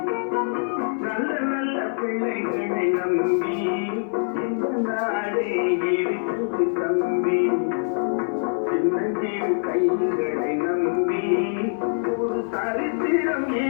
நல்ல நல்ல பிள்ளைகளை நம்பி இந்த நாடே இருக்குது தம்பி. சின்னஞ்சிறு கைகளை நம்பி ஒரு சரித்திரம்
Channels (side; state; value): right; silent; 58 dB below the other